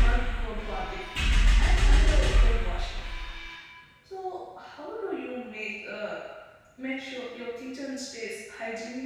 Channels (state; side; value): identical; both; correlation 1.00